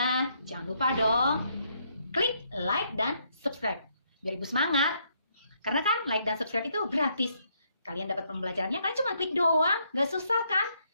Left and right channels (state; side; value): inverted; both; correlation -0.73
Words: jangan lupa dong, klik like dan subscribe. Biar Ibu semangat. Karena kan like dan subscribe itu gratis. Kalian dapat pembelajarannya, kalian cuma klik doang. Gak susah kan?